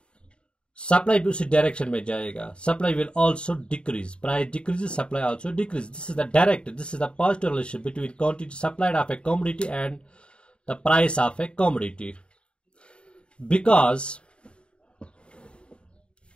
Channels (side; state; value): right; late; 0.054 ms